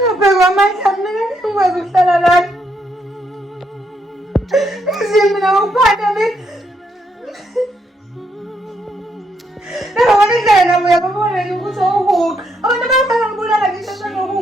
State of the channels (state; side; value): normal; both; correlation 0.76